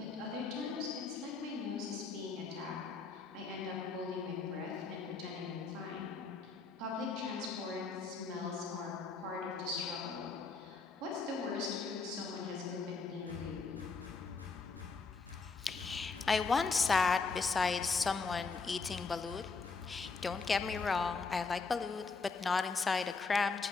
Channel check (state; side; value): quieter; right; 4.5 dB